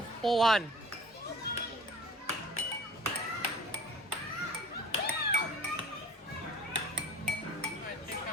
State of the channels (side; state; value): both; normal; correlation 0.43